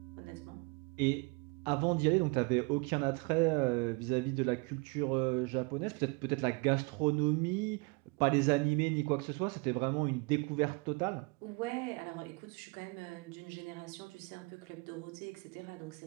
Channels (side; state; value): left; quieter; 29.2 dB